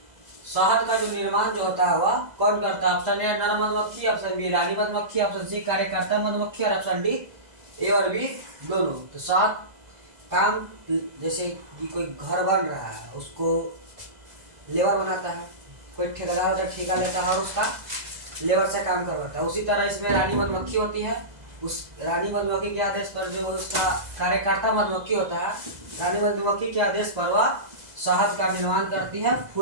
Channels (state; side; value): late; left; 2.0 ms